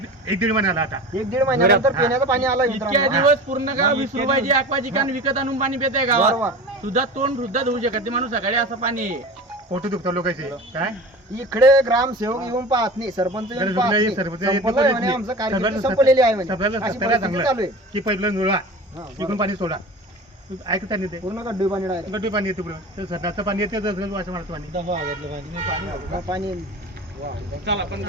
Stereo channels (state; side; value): normal; both; correlation 0.35